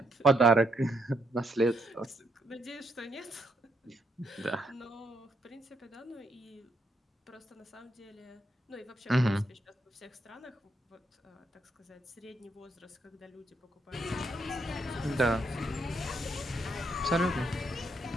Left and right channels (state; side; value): normal; both; correlation 0.76